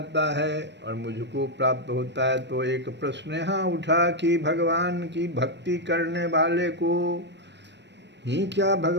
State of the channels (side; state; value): left; late; 0.51 ms